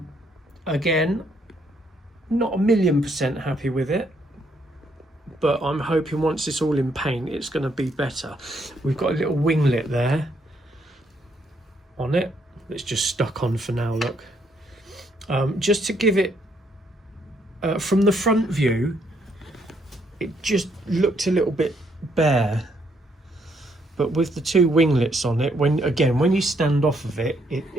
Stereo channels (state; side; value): normal; both; correlation 0.72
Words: not 1,000,000% happy with it, but I'm hoping once it's all in paint it's going to be better. We've got a little winglet there on it. It's just stuck on for now, look. Just to give it, from the front view, it just looked a little bit bare, but with the two winglets on it, when you stand off of it,